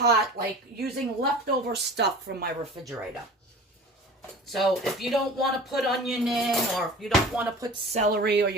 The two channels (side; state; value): both; normal; correlation 0.39